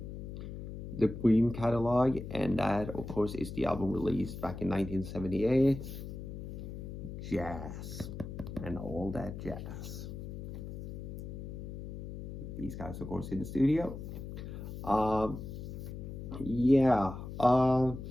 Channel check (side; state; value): left; noise; hum, 8 dB below the sound